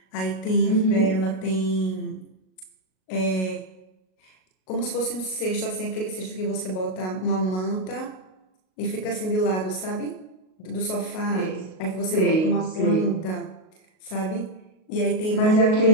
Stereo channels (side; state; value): right; late; 38 ms